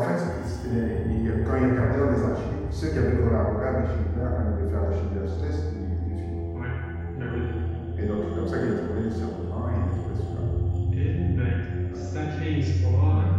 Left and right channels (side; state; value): both; identical; correlation 1.00